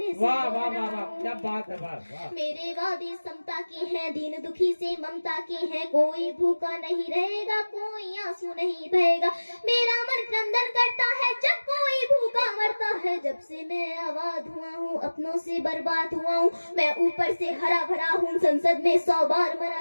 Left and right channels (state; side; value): inverted; both; correlation -1.00